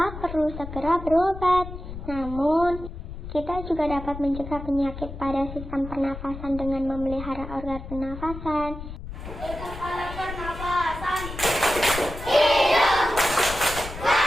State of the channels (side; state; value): left; noise; rumble, 10 dB below the sound